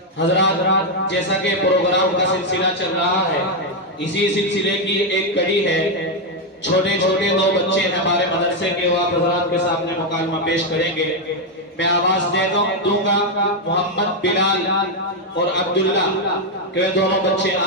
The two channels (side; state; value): both; normal; correlation 0.03